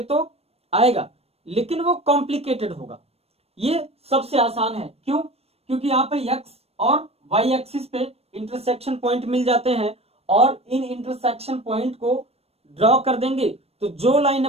तो आएगा, लेकिन वो कॉम्प्लिकेटेड होगा। ये सबसे आसान है। क्यों? क्योंकि यहाँ पे x और y एक्सिस पे इंटरसेक्शन पॉइंट मिल जाते हैं, और इन इंटरसेक्शन पॉइंट को ड्रॉ कर देंगे तो जो लाइन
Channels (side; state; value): left; late; 0.29 ms